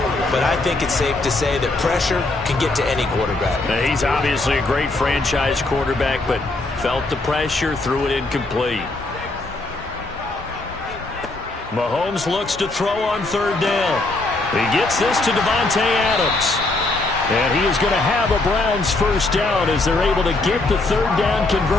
but I think it's safe to say that pressure can get to any quarterback. Now, he's obviously a great franchise quarterback, but felt the pressure, threw it incomplete. Mahomes looks to throw on 3rd down. He gets this to Davante Adams. And he is going to have a Browns first down as they're able to get the 3rd down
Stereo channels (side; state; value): right; quieter; 3.1 dB